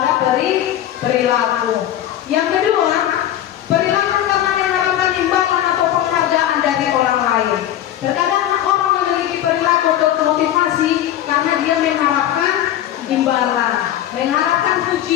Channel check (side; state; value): right; quieter; 11.9 dB